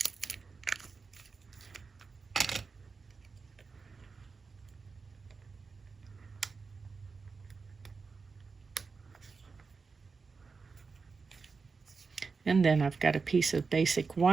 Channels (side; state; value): left; quieter; 4.7 dB